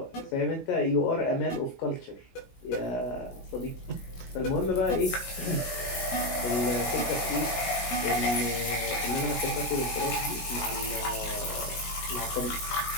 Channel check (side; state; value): right; late; 16 ms